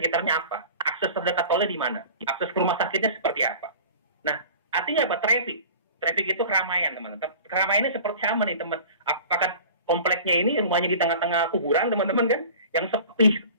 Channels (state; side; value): inverted; both; correlation -0.41